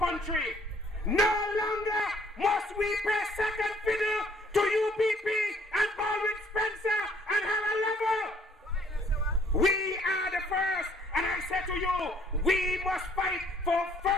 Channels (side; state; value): both; normal; correlation 0.62